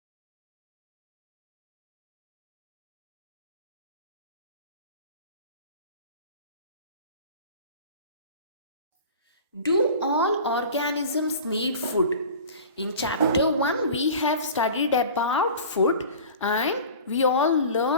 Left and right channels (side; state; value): both; inverted; correlation -0.39